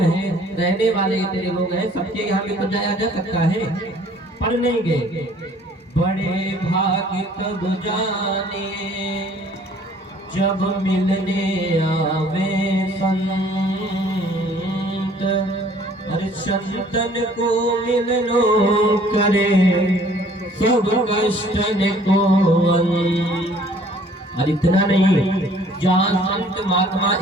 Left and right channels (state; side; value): normal; both; correlation 0.56